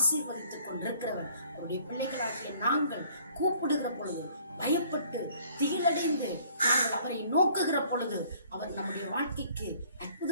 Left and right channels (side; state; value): both; inverted; correlation -0.58